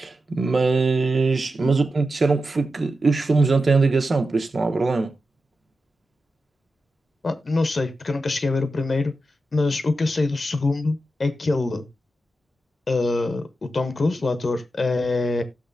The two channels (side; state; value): both; normal; correlation 0.89